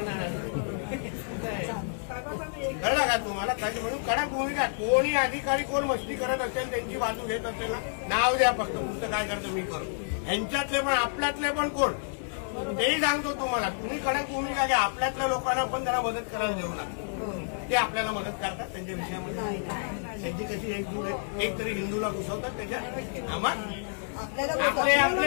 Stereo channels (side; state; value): right; silent; digital silence